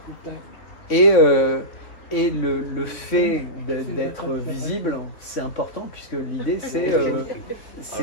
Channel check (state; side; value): late; right; 3.9 ms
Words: Et le fait d'être visible, c'est important, puisque l'idée,